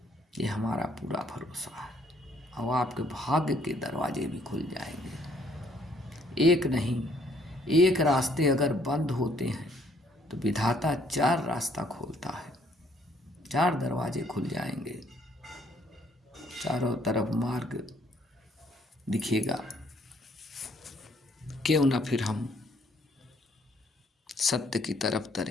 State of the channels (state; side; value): normal; both; correlation 0.65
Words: ये हमारा पूरा भरोसा है। और आपके भाग्य के दरवाजे भी खुल जाएंगे। एक नहीं, एक रास्ते अगर बंद होते हैं तो विधाता 4 रास्ता खोलता है, 4 दरवाजे खुल जाएंगे, चारों तरफ मार्ग दिखेगा। क्यों ना फिर हम सत्य की तरफ